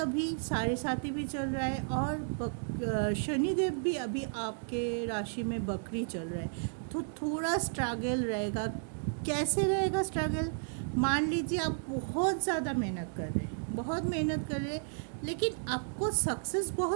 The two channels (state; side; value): silent; left; digital silence